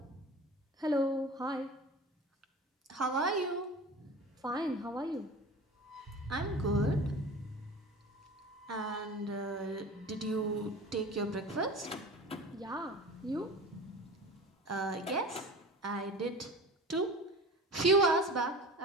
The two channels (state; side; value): normal; both; correlation 0.36